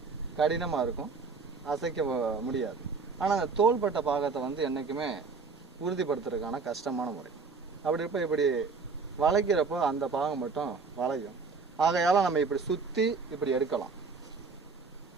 கடினமாக இருக்கும், அசைக்க முடியாது. ஆனால் அந்த தோள்பட்டை பாகத்தை என்றைக்குமே உறுதிப்படுத்துறதுக்கான கஷ்டமான முறை. அப்படி இருப்ப இப்படி வளைக்கிறப்போ அந்த பாகம் மட்டும் வளையும். ஆகையால் நம்ம இப்படி சுற்றி இப்படி எடுக்கலாம்.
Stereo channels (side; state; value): left; quieter; 4.7 dB